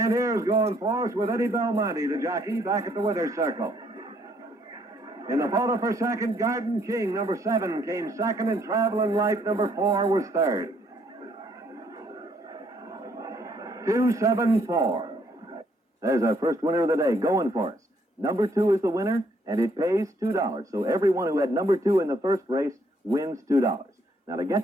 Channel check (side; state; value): both; normal; correlation 0.68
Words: here's Going Force with Eddie Belmonte, the jockey, back at the winner's circle. In the photo for second, Garden King, number 7, came second, and Traveling Light, number 4, was third. 274. There's our first winner of the day, Going Force. Number 2 is the winner, and it pays $2. So everyone who had number 2 in the first race wins $2. Now, to